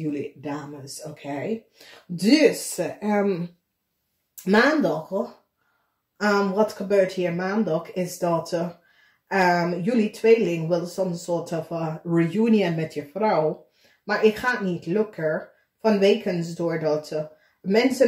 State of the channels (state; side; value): identical; both; correlation 1.00